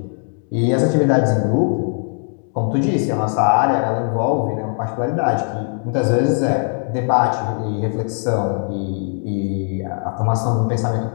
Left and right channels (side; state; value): right; silent; 56 dB below the other